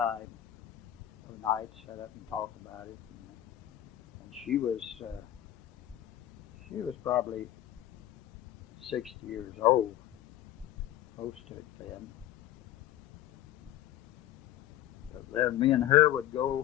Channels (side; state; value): right; quieter; 13.1 dB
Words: Of nights, sit up and talk about it. And she was probably 60 years old, close to it then. But then me and her would